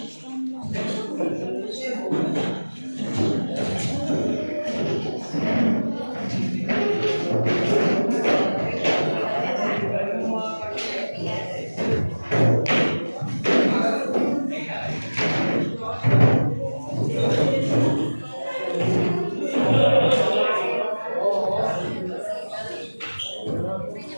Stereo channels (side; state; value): both; inverted; correlation -1.00